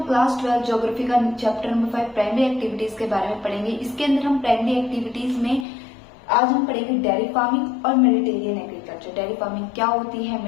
class 12 geography का चैप्टर नंबर 5 प्राइमरी एक्टिविटीज के बारे में पढ़ेंगे। इसके अंदर हम प्राइमरी एक्टिविटीज में आज हम पढ़ेंगे डेयरी फार्मिंग और मेडिटेरियन एग्रीकल्चर। डेयरी फार्मिंग क्या होती है,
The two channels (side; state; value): right; drops out; at 5.7 s